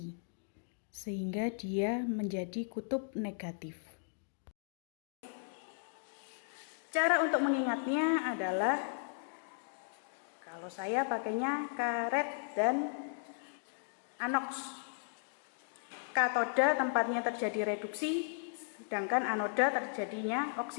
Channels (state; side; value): silent; right; digital silence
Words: sehingga dia menjadi kutub negatif. Cara untuk mengingatnya adalah kalau saya pakainya karet dan anoks. Katoda tempatnya terjadi reduksi, sedangkan anoda terjadinya